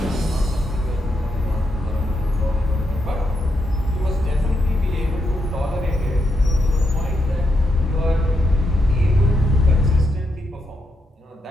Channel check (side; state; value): both; normal; correlation 0.82